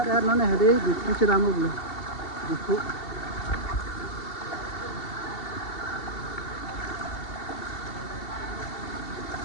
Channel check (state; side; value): late; right; 2.7 ms